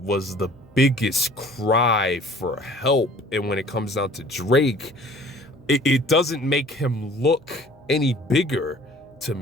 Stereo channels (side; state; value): left; noise; hum, 28 dB below the sound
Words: was the biggest cry for help. And when it comes down to Drake, it doesn't make him look any bigger to